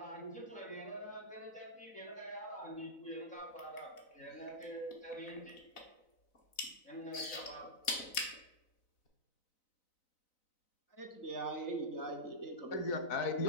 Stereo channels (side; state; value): right; late; 3.9 ms